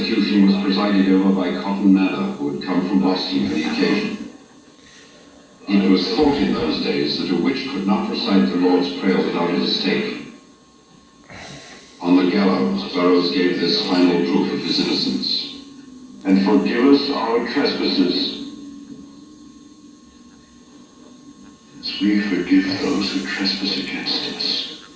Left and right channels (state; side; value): identical; both; correlation 1.00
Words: was presided over by Cotton Mather, who had come from Boston for the occasion. It was thought in those days that a witch could not recite the Lord's Prayer without a stake. On the gallows, Burroughs gave this final proof of his innocence. And forgive us our trespasses, as we forgive those who trespass against us.